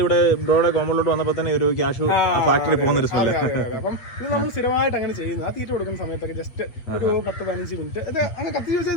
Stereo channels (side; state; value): right; late; 8.6 ms